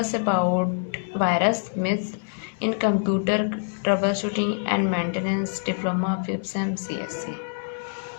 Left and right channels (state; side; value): silent; right; 61 dB below the other